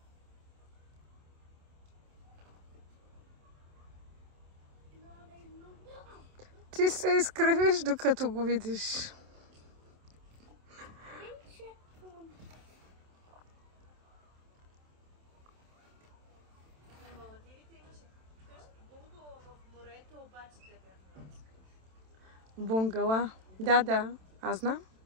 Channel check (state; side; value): late; left; 27 ms